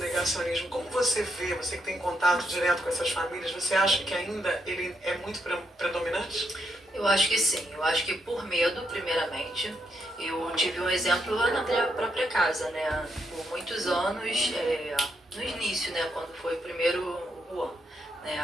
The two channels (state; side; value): normal; both; correlation 0.79